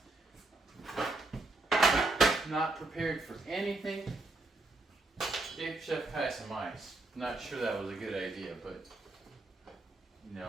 Not prepared for anything. Gave Chef Kai some ice. Not sure that was a good idea, but you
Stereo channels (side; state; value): left; quieter; 3.0 dB